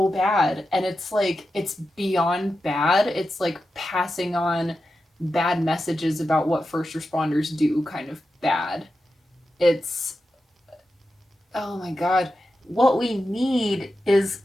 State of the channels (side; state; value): both; normal; correlation 0.90